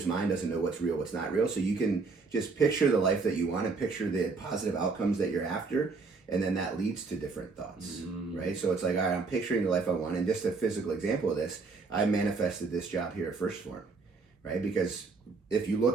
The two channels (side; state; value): left; quieter; 4.3 dB